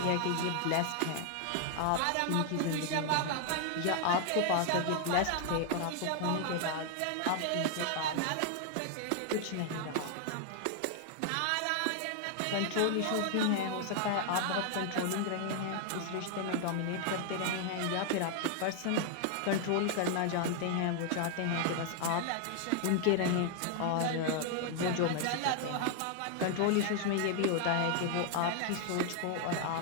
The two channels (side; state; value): both; different; correlation 0.00